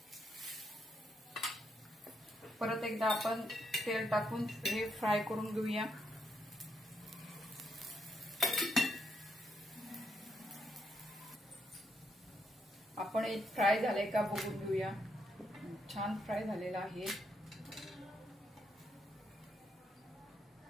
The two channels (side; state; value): both; normal; correlation 0.78